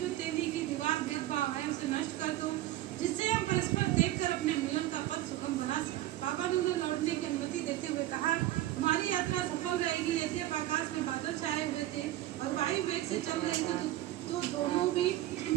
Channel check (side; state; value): left; quieter; 14.8 dB